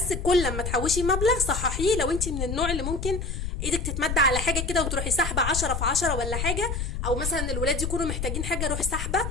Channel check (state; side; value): noise; left; rumble, 3 dB below the sound